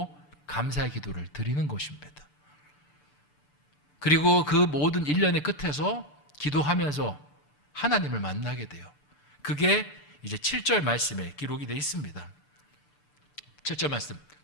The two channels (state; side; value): late; right; 6.8 ms